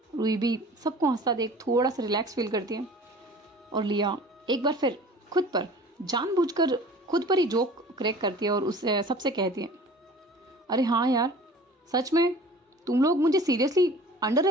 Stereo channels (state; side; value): normal; both; correlation 0.44